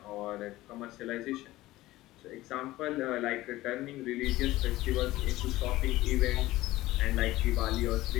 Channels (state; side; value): quieter; right; 17.1 dB